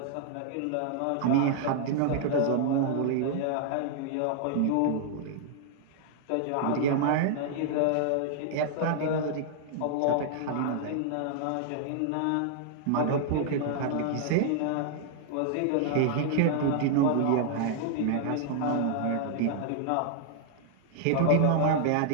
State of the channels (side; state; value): both; different; correlation 0.00